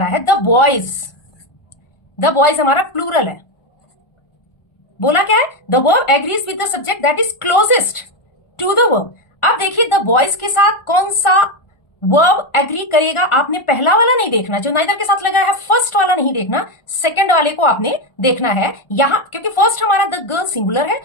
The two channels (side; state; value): right; late; 1.4 ms